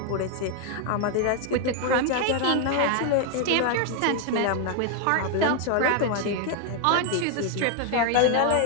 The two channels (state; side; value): different; both; correlation 0.00